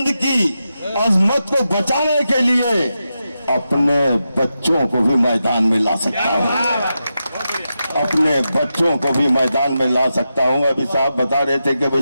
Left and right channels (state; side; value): inverted; both; correlation -0.89